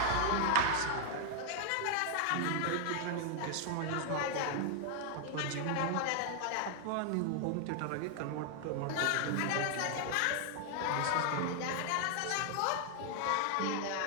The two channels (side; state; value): both; different; correlation 0.00